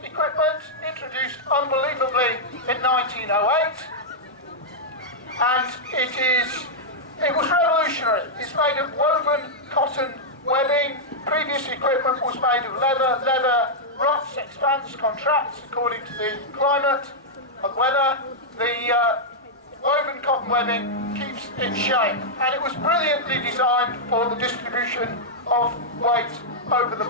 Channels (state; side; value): normal; both; correlation -0.06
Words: equipment, introduced unbelievably in 1908, and it was revolutionary. It's made of woven cotton webbing. Previous equipment was made of leather. Leather rots, expands, contracts according to the climate and weather. The woven cotton webbing keeps its shape, and it was brilliantly designed for the distribution of weight over the